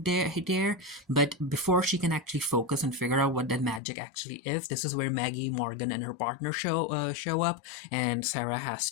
there. But before she can actually focus and figure out what that magic actually is, this is where Maggie, Morgan, and her partner show up, and Sarah has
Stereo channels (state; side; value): drops out; right; at 3.8 s